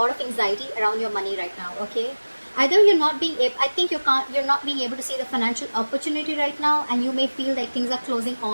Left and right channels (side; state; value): both; inverted; correlation -1.00